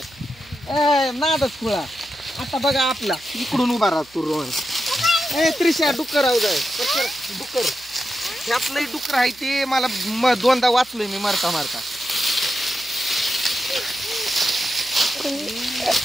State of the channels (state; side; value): noise; right; hum, 27 dB below the sound